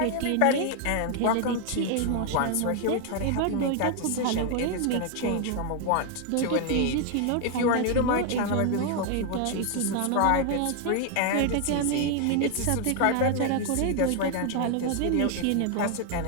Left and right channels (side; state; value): both; different; correlation 0.00